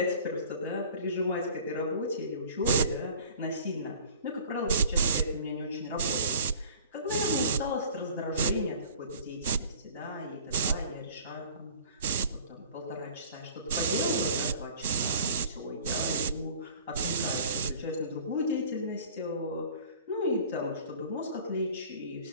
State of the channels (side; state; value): both; inverted; correlation -0.46